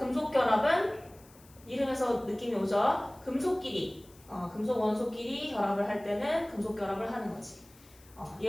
결합은 이름에서 느낌이 오죠? 금속끼리, 금속 원소끼리 결합을 할 때는 금속 결합을 하는 거지.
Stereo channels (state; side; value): noise; left; hiss, 25 dB below the sound